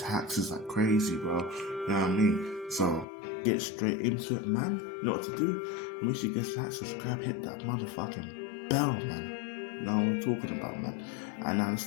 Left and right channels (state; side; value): drops out; right; at 3.1 s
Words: It's like crazy, bro. You know what I mean? So, get straight into it, man. You know what to do? Make sure you get like, subscribe, hit that motherfucking bell, man. You know what we're talking about, man. And now